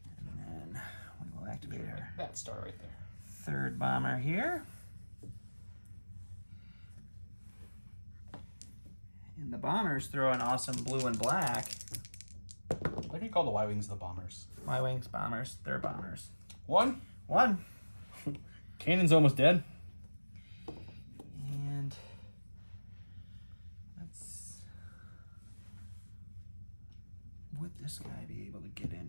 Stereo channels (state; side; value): inverted; both; correlation -1.00